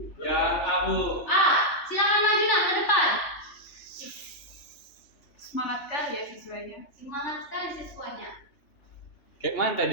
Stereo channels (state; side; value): late; right; 3.3 ms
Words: Ya Abu. A. Silakan maju nak ke depan. Semangat kali ya siswanya. Semangat sekali siswanya. Kayak mana